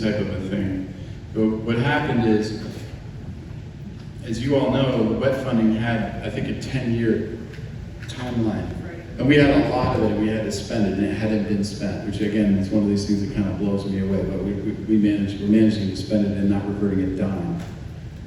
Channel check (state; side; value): identical; both; correlation 1.00